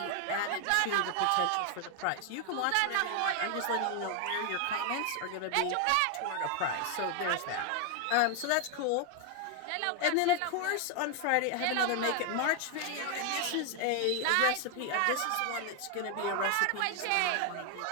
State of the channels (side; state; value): both; different; correlation 0.00